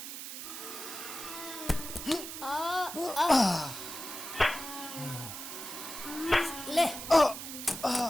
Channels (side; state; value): right; noise; hiss, 8 dB below the sound